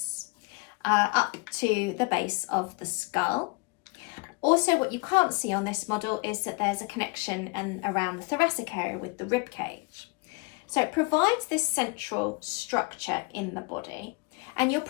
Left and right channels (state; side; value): quieter; right; 29.1 dB